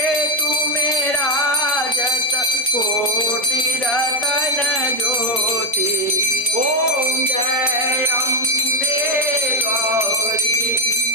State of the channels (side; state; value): both; normal; correlation 0.06